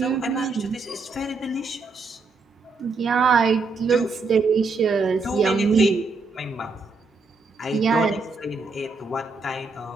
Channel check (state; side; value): quieter; left; 4.1 dB